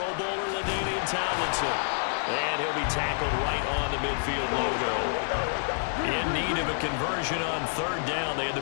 Bowler, LaDainian Tomlinson. And he'll be tackled right on the midfield logo. In need of a conversion on 3rd down. They had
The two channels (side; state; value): right; silent; digital silence